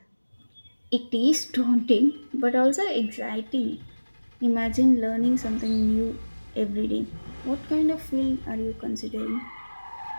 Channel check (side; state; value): both; inverted; correlation -1.00